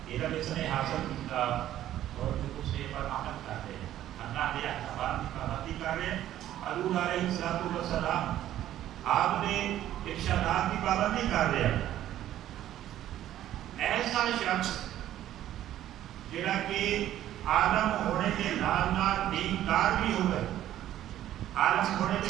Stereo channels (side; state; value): left; quieter; 12.5 dB